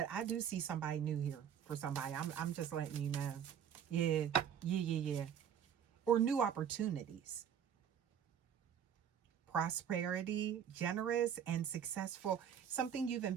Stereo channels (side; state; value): left; quieter; 8.7 dB